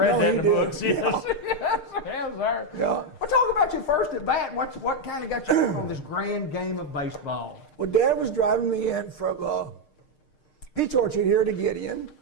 that in the did. books. Yes. Yeah. Yes, sir. Yeah. Well, talk about your first at bat. What kind of got you on this grand game of baseball? Well, Dad was driving me in from Peach Orchard here to Gideon,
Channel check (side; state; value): right; late; 6.6 ms